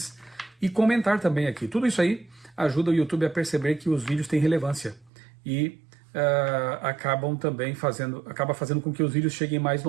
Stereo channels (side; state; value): left; drops out; at 5.1 s